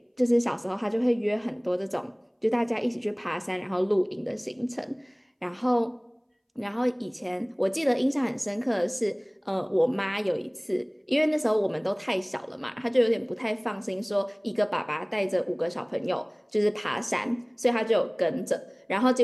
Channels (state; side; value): identical; both; correlation 1.00